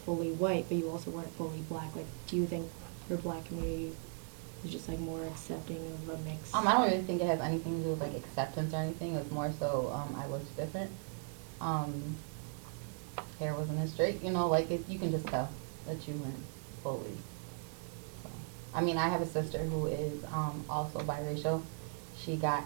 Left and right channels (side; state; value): left; silent; 53 dB below the other